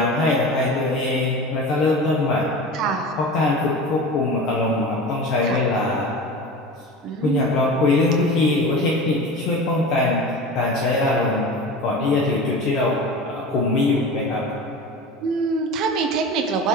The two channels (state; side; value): normal; both; correlation 0.33